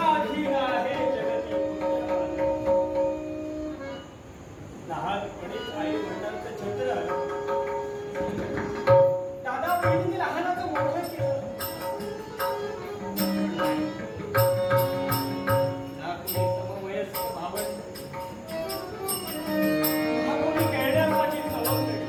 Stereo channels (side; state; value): both; identical; correlation 1.00